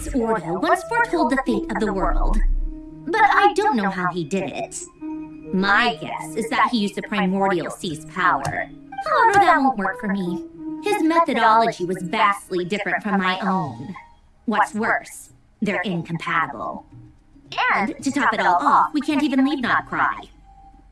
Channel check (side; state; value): both; identical; correlation 1.00